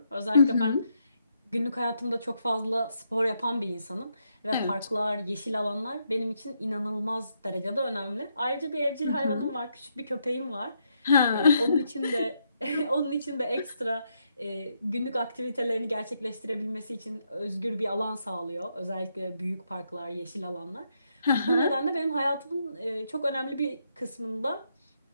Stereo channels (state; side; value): inverted; both; correlation -0.78